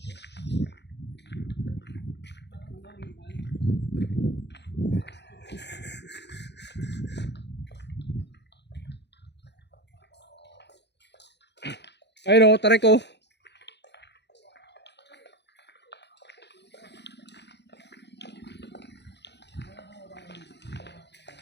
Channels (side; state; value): right; late; 0.50 ms